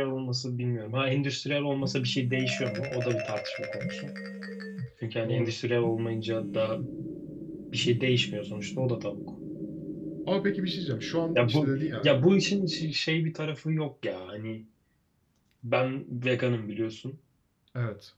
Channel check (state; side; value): identical; both; correlation 1.00